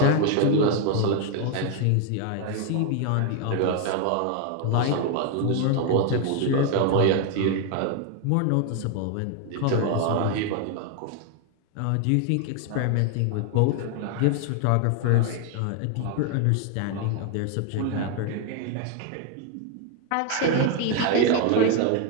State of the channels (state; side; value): different; both; correlation 0.01